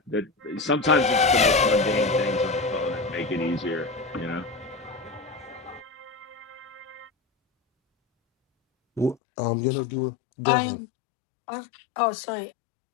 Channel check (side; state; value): right; drops out; at 9.2 s